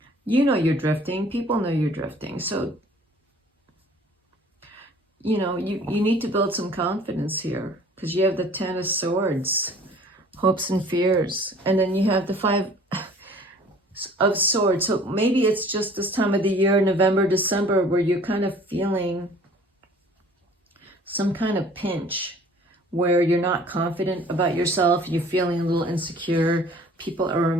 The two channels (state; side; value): normal; both; correlation 0.51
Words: You know you're drifting. People know you're drifting. So, you know, you need to build some confidence here, because you have the Ten of Swords, hopes and fears. And then you have the Five of Swords. So maybe it's just this time of the year, November, December, where you're kind of feeling some kind of pinch, where you're not confident about yourself. You're feeling a little insecure. People are